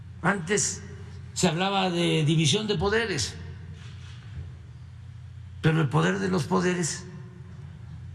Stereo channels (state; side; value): identical; both; correlation 1.00